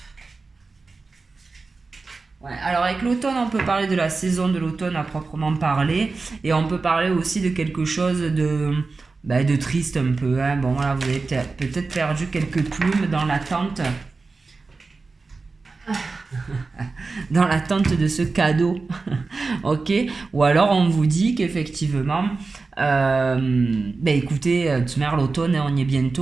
Ouais, alors avec l'automne, on peut parler de la saison de l'automne à proprement parler. Et on peut parler aussi de quelque chose de triste un peu. Hein. Bon voilà, vous avez peut-être perdu quelques plumes dans l'attente. Dans l'attente de ce cadeau. Ok, ou alors on vous dit qu'effectivement écoutez, tu mets l'automne, on y est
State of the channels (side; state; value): left; quieter; 4.0 dB